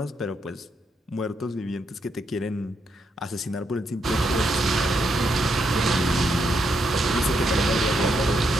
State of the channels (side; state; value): both; normal; correlation 0.79